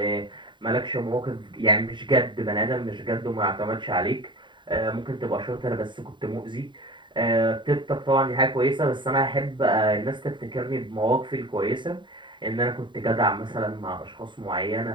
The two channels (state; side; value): late; left; 0.23 ms